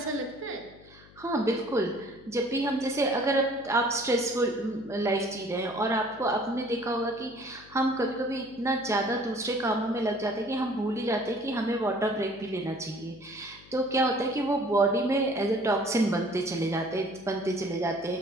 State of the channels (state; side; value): noise; left; hum, 23 dB below the sound